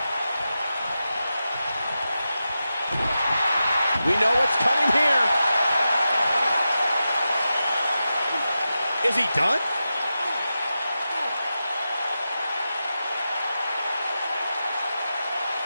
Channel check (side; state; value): both; inverted; correlation -0.91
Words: We know what's coming here. Is he done?